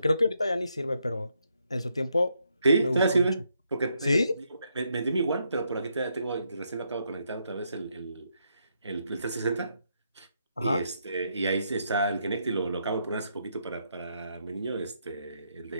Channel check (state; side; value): inverted; both; correlation -0.77